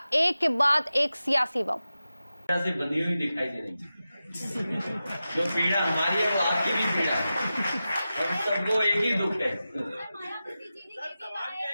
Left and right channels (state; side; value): inverted; both; correlation -0.93